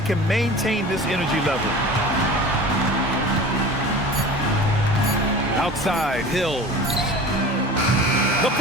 can maintain this energy level. Outside, Hill. The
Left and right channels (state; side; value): normal; both; correlation 0.38